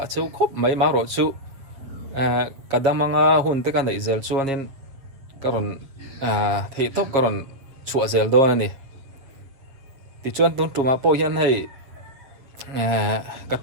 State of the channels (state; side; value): late; left; 7.6 ms